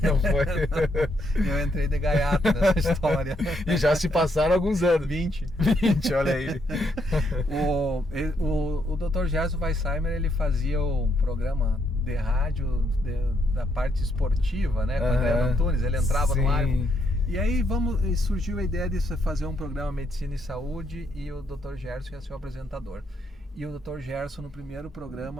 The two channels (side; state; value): both; normal; correlation 0.75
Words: Não foi? Eu entrei de gaiato nessa história. E já se passaram alguns anos. 20, olha aí. O Dr. Gerson Weissheimer, ele fazia um programa de rádio da parte esportiva, né? Com o André Antunes, ele entrava no ar. E aí surgiu a ideia de fazer um programa Medicina e Saúde, e o Dr. Gerson ia ser o apresentador. E o Dr. Gerson, no primeiro